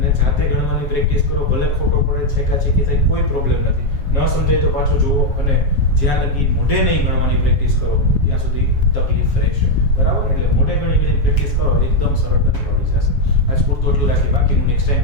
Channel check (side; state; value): right; late; 7.2 ms